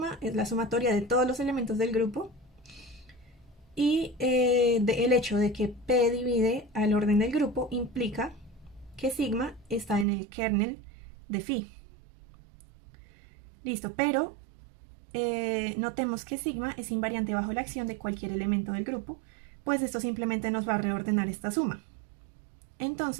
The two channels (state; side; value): drops out; left; at 10.1 s